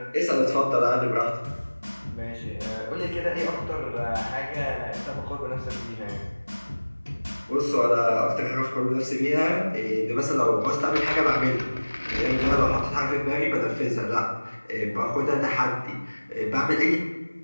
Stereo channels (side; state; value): both; inverted; correlation -1.00